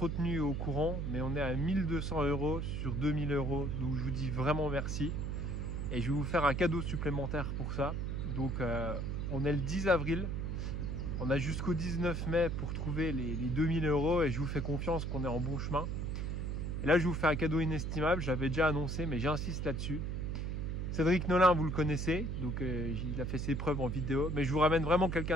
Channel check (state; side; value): noise; right; hum, 2 dB below the sound